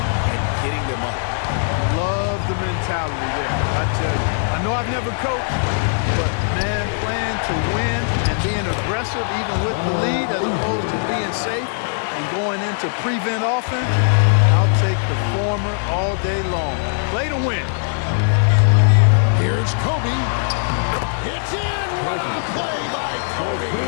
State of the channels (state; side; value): silent; right; digital silence